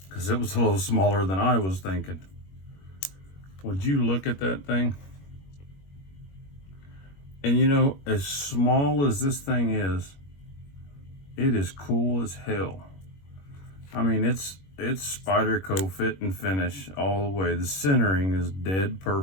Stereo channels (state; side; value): late; right; 21 ms